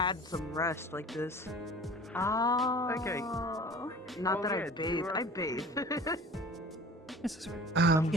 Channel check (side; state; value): both; normal; correlation 0.43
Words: some rest like this. Oh. Okay. Not Well, that yeah, I do you, bathe. I bathe. This is right.